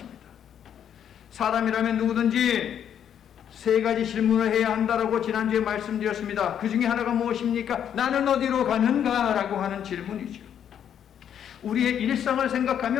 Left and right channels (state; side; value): quieter; right; 9.2 dB